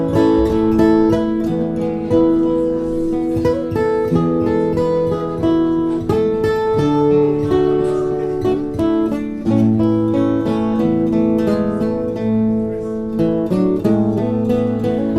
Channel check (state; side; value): identical; both; correlation 1.00